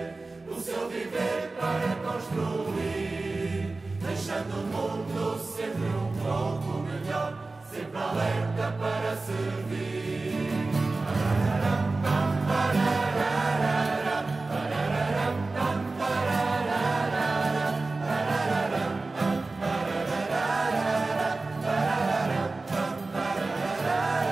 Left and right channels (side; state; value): left; quieter; 3.5 dB